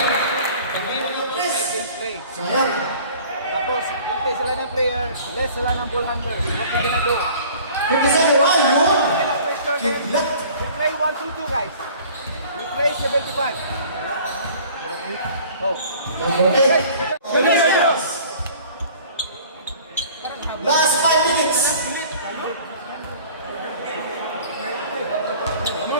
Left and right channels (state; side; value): inverted; both; correlation -0.48